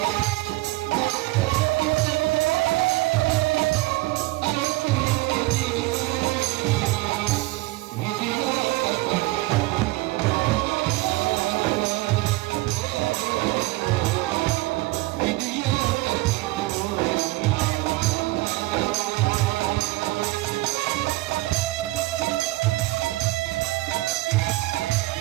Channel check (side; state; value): left; quieter; 20.2 dB